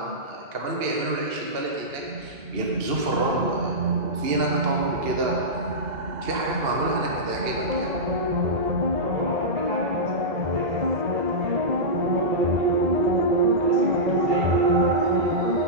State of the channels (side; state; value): left; late; 2.7 ms